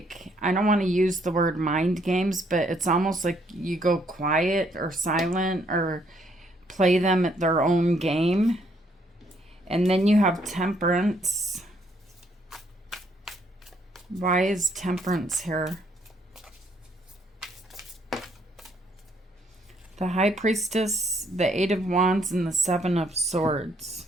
I don't want to use the word mind games, but it's almost like you go quiet or silent or play them at their own game. And then you have Temperance. Why is Temperance here? The High Priestess, the Eight of Wands, and the Seven of Swords.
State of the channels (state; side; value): normal; both; correlation 0.69